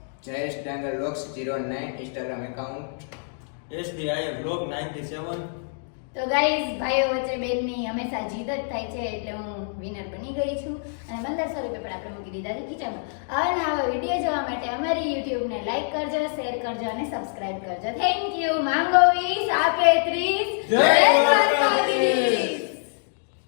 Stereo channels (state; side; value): silent; right; digital silence